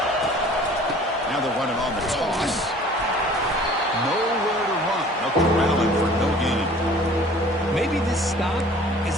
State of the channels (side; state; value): both; normal; correlation 0.49